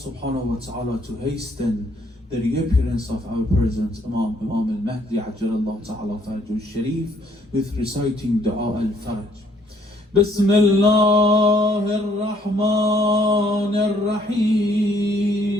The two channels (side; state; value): both; normal; correlation 0.65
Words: wa ta'ala to hasten the reappearance of our present Imam al-Mahdi Ajjalallahu Ta'ala Farajul Sharif with reciting Dua al-Faraj. بسم الله الرحمن